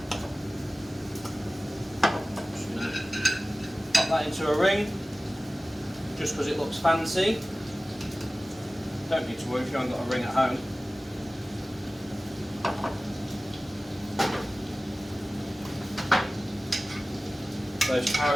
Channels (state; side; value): normal; both; correlation 0.97